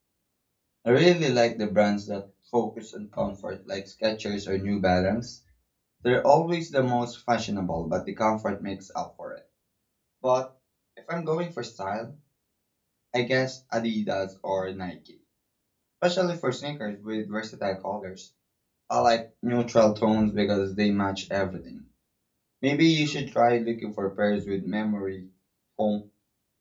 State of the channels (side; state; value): both; identical; correlation 1.00